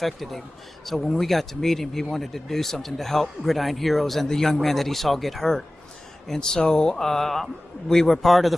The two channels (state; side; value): normal; both; correlation 0.97